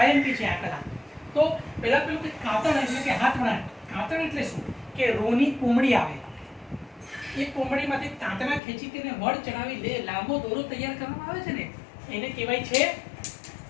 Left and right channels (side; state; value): right; drops out; at 8.6 s